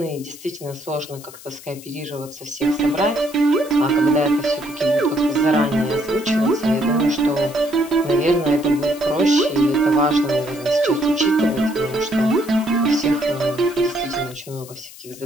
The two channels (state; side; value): noise; left; hiss, 18 dB below the sound